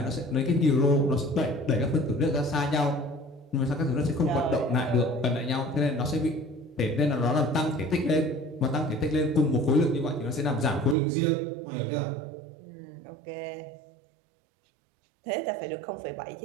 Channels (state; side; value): drops out; left; at 11.0 s